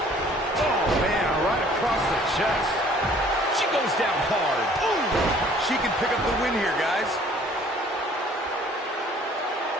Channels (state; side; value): normal; both; correlation 0.55